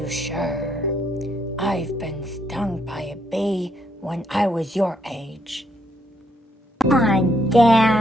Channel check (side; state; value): both; normal; correlation 0.74